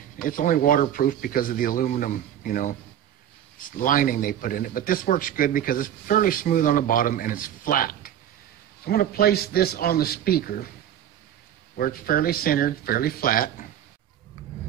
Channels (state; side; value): quieter; left; 10.6 dB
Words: it's only waterproof because of the aluminum, lining they put in it. But this works good because it's fairly smooth on the bottom and it's flat. So I'm going to place this on the speaker where it's fairly centered, fairly flat.